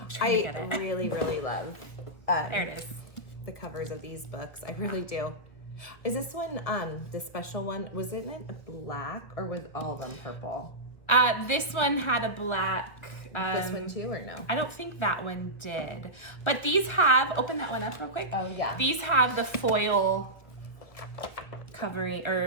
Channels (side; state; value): right; late; 1.2 ms